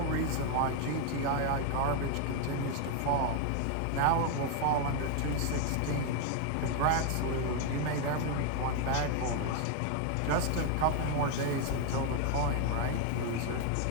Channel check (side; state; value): both; different; correlation 0.00